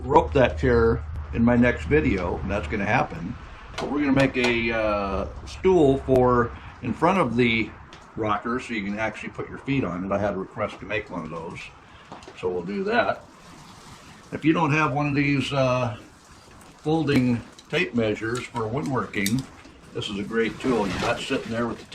rope that chair in my next video, and that's going to happen. But we're going to make a stool for in front of the rocker so you can actually put your feet on it. I had a request to make one of those, so we'll do that. If you don't have one of these folding tape measures for woodworking, this is a great tool. You're not sitting there with the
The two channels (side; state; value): both; identical; correlation 1.00